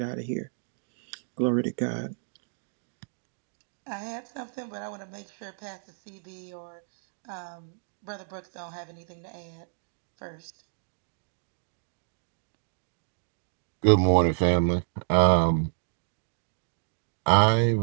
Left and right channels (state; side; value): silent; left; digital silence